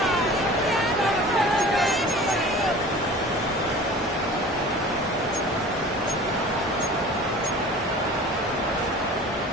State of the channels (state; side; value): normal; both; correlation 0.41